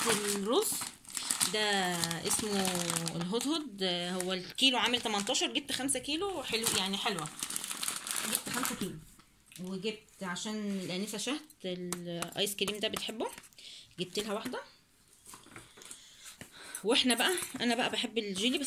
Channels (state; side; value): identical; both; correlation 1.00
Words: الرز ده اسمه الهدهد، هو الكيلو عامل 18، جبت 5 كيلو حلو يعني حلوه، جبت 5 كيلو. وجبت عشان الانسه شهد الايس كريم ده بتحبه، جبت لها واحده. واحنا بقى انا بقى بحب الجيلي بس